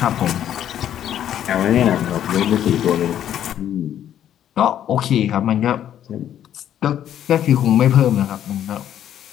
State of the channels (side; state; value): right; quieter; 10.6 dB